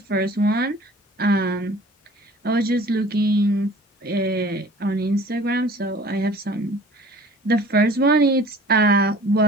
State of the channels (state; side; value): normal; both; correlation 0.48